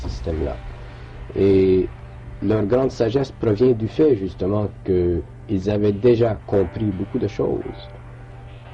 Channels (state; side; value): identical; both; correlation 1.00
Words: Et leur grande sagesse provient du fait justement qu'ils avaient déjà compris beaucoup de choses.